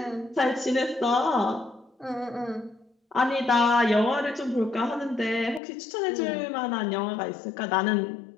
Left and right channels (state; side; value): drops out; right; at 5.6 s